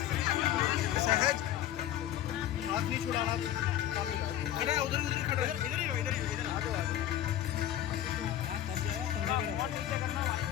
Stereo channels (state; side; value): quieter; right; 12.1 dB